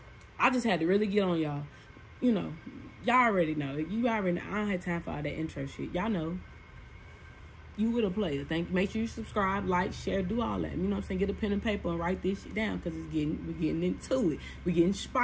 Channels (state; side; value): identical; both; correlation 1.00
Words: I just had to really get on y'all. You know, y'all already know. You already know. I don't have time for all that intro shit. Y'all know. You with a player. Make sure you subscribe, like, share, do all that. You know what I'm saying? Get a pen and paper and write this shit down because we're getting into it. We're getting